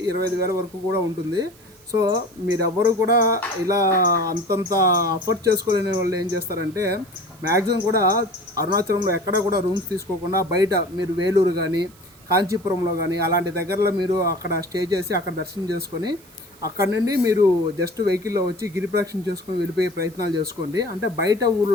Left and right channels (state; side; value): noise; right; hiss, 26 dB below the sound